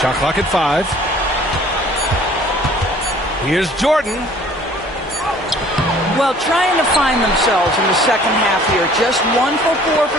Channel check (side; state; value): both; normal; correlation 0.53